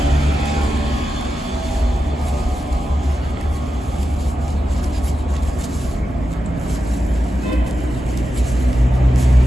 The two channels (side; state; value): both; normal; correlation 0.90